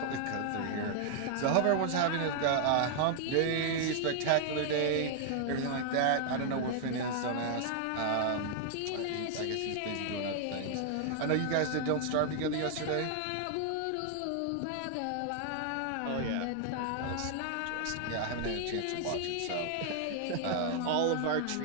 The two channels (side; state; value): both; different; correlation 0.00